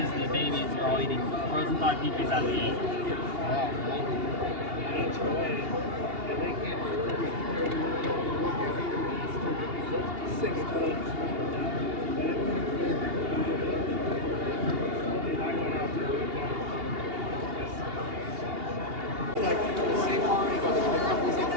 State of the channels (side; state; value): left; late; 2.8 ms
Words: the babies are all eating frozen thawed peaches out of the egg. Like the same one, he goes, the company's in